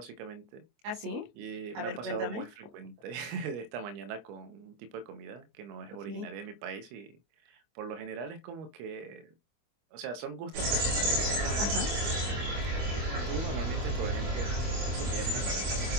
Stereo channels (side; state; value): left; late; 25 ms